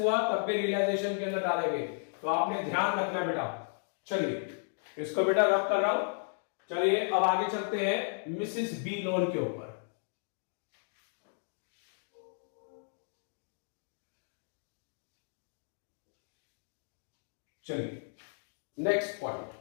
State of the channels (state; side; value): silent; right; digital silence